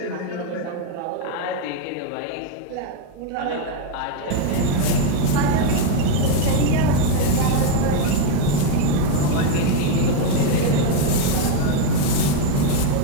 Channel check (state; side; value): different; both; correlation 0.01